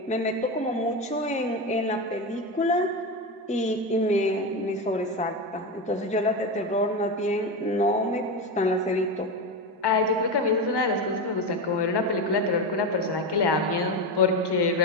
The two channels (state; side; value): normal; both; correlation 0.16